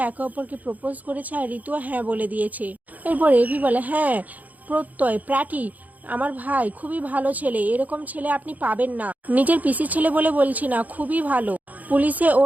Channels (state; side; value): late; left; 0.078 ms